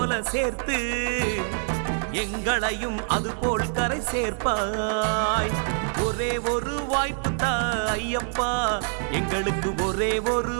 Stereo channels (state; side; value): silent; left; 61 dB below the other